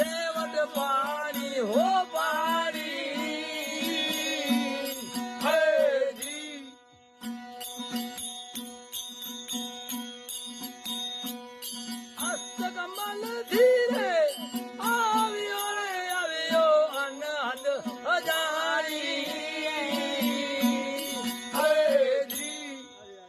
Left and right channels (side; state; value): both; identical; correlation 1.00